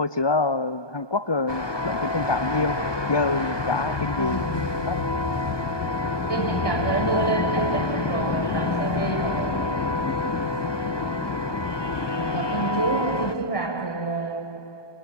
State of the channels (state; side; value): late; right; 1.2 ms